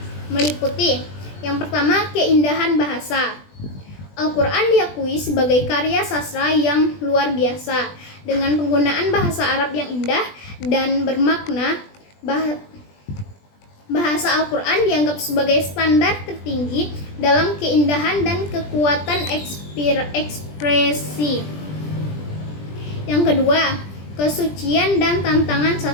meliputi: yang pertama, keindahan bahasa. Al-Quran diakui sebagai karya sastra yang luar biasa dengan penggunaan bahasa Arab yang indah dan bermakna. Bahasa Al-Quran dianggap sebagai standar tertinggi dalam keindahan dan kekuatan ekspresi. Yang kedua, kesucian dan tantangan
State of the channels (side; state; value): right; late; 20 ms